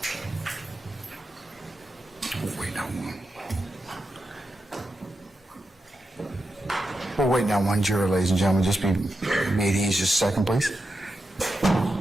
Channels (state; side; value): normal; both; correlation 0.88